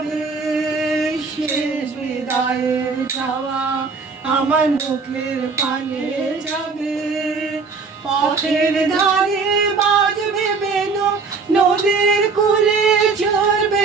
শেষ বিদায়ের চাওয়া আমার মুখের পানে যাবে। পথের ধারে বাজবে বেনু, নদীর কূলে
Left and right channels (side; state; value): left; quieter; 4.7 dB